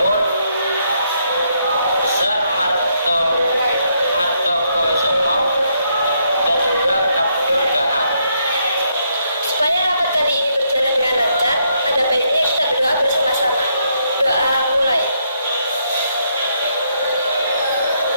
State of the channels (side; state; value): both; inverted; correlation -0.74